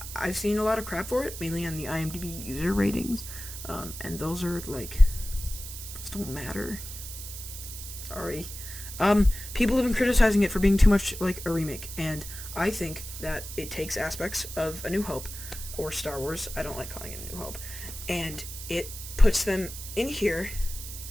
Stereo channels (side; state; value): right; noise; hiss, 10 dB below the sound